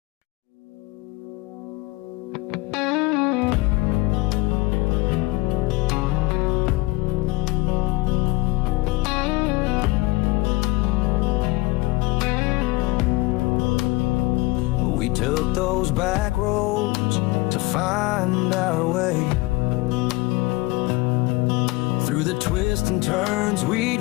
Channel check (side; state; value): right; quieter; 21.6 dB